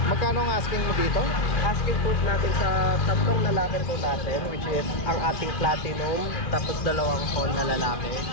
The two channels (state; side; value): late; right; 2.6 ms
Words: Magkano ang asking mo dito? Asking po natin sa tatlong lalaki po natin, which is ang ating platinum, tapos dalawang phone na lalaki,